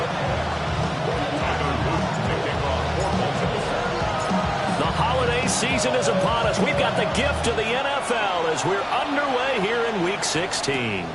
Season is upon us. We've got the gift of the NFL as we're underway here in Week 16. And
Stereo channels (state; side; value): identical; both; correlation 1.00